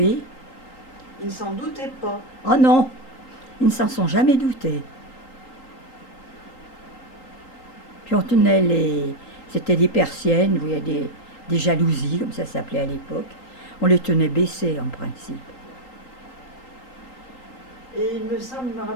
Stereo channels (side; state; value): right; late; 3.8 ms